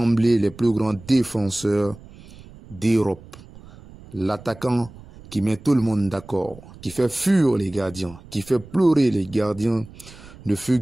les plus grands défenseurs d'Europe. L'attaquant qui met tout le monde d'accord, qui fait fuir les gardiens, qui fait pleurer les gardiens, ne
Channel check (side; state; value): right; noise; rumble, 20 dB below the sound